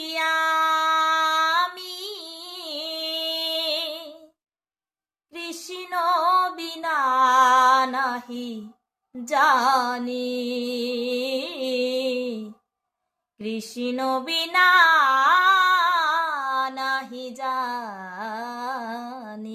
আমি, কৃষ্ণ বিনা নাহি জানি, কৃষ্ণ বিনা নাহি জানি।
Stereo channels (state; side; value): identical; both; correlation 1.00